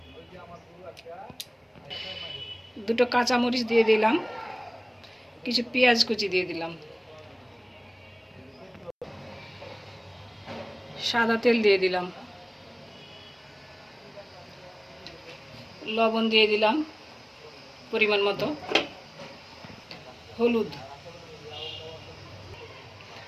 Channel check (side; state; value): both; identical; correlation 1.00